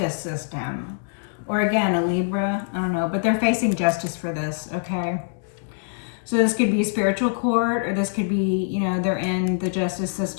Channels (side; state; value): right; silent; digital silence